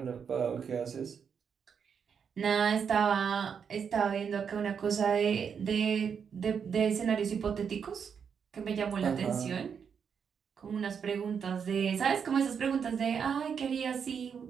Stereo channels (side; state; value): left; quieter; 6.9 dB